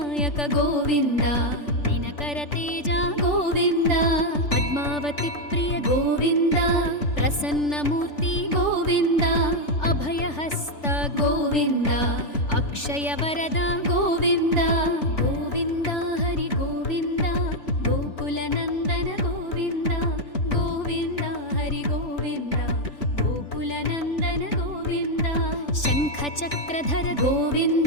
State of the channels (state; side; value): late; right; 3.4 ms